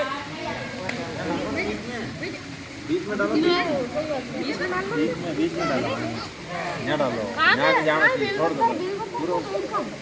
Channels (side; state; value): both; identical; correlation 1.00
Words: बीच में डालो, बीच में डालो, यहाँ डालो, यहाँ जाना चाहिए, छोड़ दो,